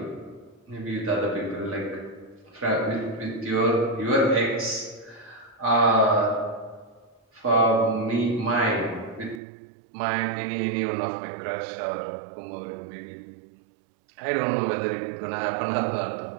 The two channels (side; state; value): left; drops out; at 9.4 s